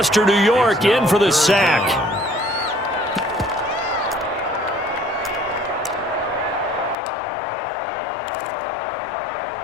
New York, in for the sack.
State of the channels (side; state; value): right; drops out; at 7.0 s